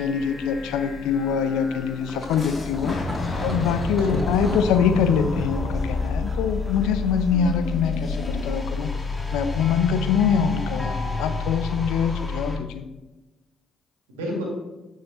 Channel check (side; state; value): right; quieter; 5.5 dB